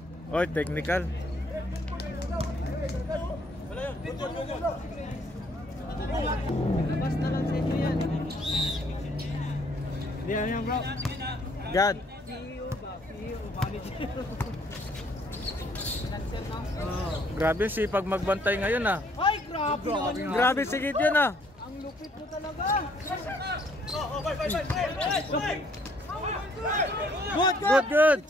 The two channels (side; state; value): both; normal; correlation 0.65